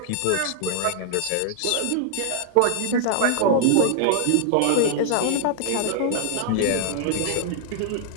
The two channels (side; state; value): both; different; correlation -0.01